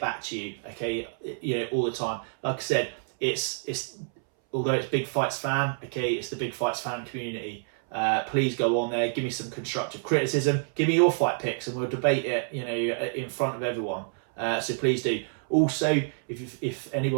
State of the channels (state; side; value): silent; left; 59 dB below the other